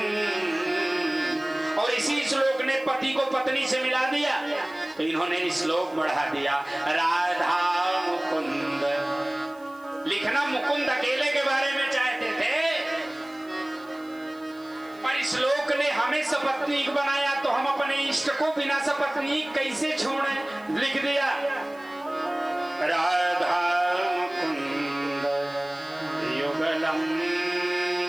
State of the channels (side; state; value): right; noise; hiss, 29 dB below the sound